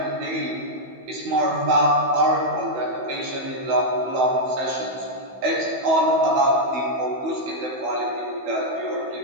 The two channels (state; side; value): late; left; 15 ms